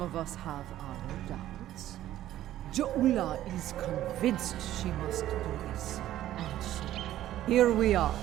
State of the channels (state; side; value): quieter; left; 13.2 dB